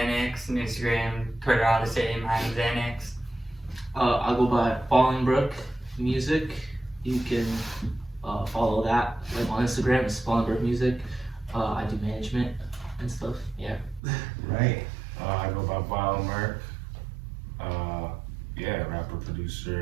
And Instagram, Twitter, all the same. I am Xanax. I'll go by Fallingbrook Music. You can follow that on Instagram. It's Fallingbrook Music. I do management and stuff. Yeah. Right. I go by Vile Merc. Yeah, rapper,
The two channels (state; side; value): drops out; left; at 14.0 s